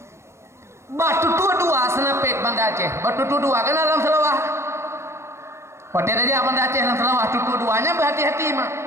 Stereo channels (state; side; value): late; left; 0.13 ms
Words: batu dua senapet Banda Aceh batu dua kan dalam selawah pada aja Banda Aceh dalam selawah tutu duanya berhati-hati mah